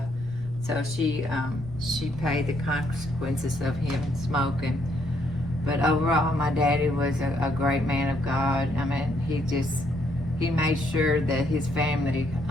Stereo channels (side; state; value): right; noise; rumble, 14 dB below the sound